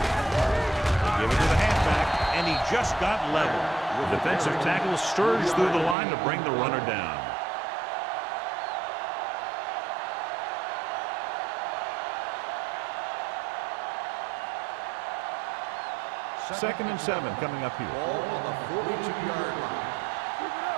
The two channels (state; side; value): drops out; left; at 6.0 s